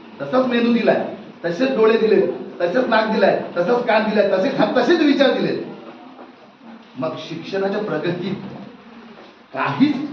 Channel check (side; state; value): both; identical; correlation 1.00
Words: तसंच मेंदू दिलाय, तसेच डोळे दिले, तसेच नाक दिलाय, तसंच कान दिलाय, तसेच विचार दिले. मग शिक्षणाच्या प्रगतीत